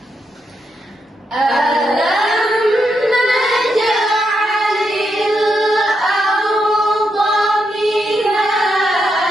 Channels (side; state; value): both; normal; correlation 0.82